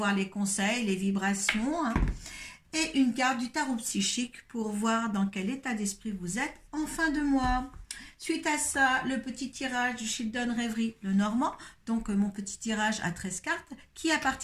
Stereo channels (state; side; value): identical; both; correlation 1.00